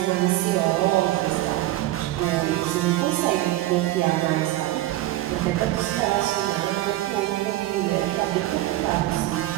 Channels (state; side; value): quieter; left; 15.9 dB